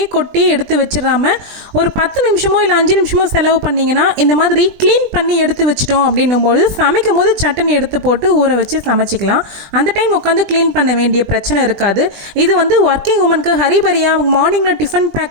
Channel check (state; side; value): late; left; 20 ms